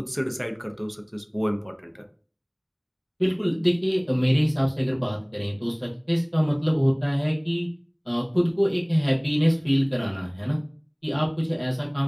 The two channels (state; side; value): identical; both; correlation 1.00